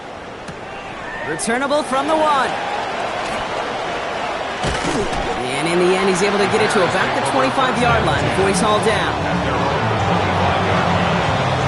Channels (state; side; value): identical; both; correlation 1.00